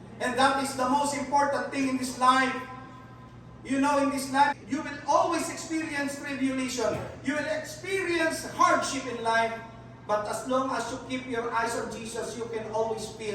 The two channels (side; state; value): both; identical; correlation 1.00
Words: And that is the most important thing in this life. You know, in this life, you will always experience tribulation. You will experience hardship in life. But as long as you keep your eyes on Jesus, you can always